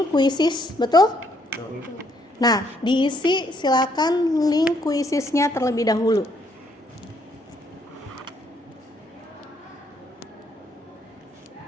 kuisis, betul? Nah, diisi silakan link kuisisnya terlebih dahulu.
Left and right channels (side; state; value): both; normal; correlation 0.70